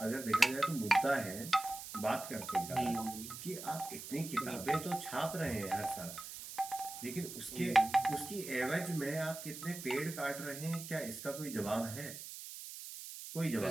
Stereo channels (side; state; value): right; noise; hiss, 10 dB below the sound